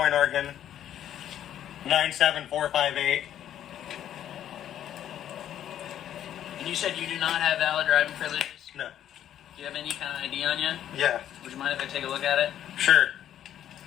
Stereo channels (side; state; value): right; quieter; 10.9 dB